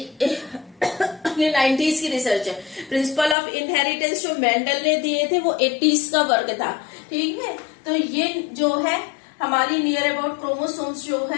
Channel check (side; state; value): right; drops out; at 3.4 s